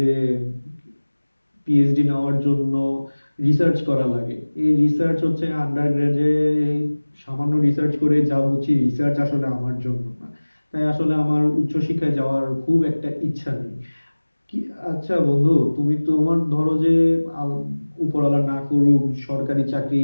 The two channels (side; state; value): both; inverted; correlation -1.00